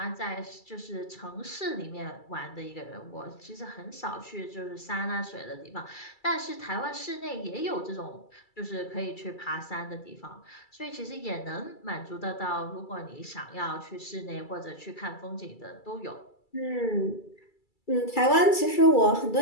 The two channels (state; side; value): late; right; 2.3 ms